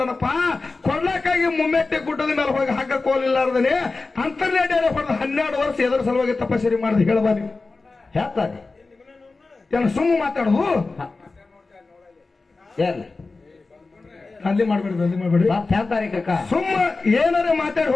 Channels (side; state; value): right; quieter; 3.7 dB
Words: ಕೊಡ್ಲಕ್ಕಾಗಿ ಮುಮ್ಮೆಟ್ಟೆ ಗುಡ್ಡದ ಮೇಲೆ ಹೋಗಿ ಹಗ್ಗ ಕೋಲಿಲ್ಲಾರ್ದನೆ ಅಂತರ್ನೇಡಿಯಲ್ಲಿ ಹೊಡೆದ 12 ವರ್ಷ ಎದುರು ಸಲುವಾಗಿ ತಪಸ್ಸರಿ ಮಾಡಿದ ಹೇಳಬಾರಿ ಹೇಳ್ತಾರೆ. ಏನ ಸುಮ್ಮ ಮಾತಾಡುದು ಅಲ್ಲಿ ಮಾಡ್ಬೇಡಿ ಸುಮ್ಮ ಏನಾರ ಮಾತಾಡಿ